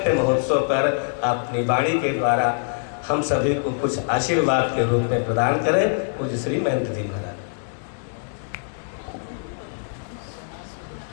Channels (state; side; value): silent; right; digital silence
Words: महोत्सव पर अपनी वाणी के द्वारा हम सभी को कुछ आशीर्वाद के रूप में प्रदान करें। पूज्य श्री महंत जी महाराज।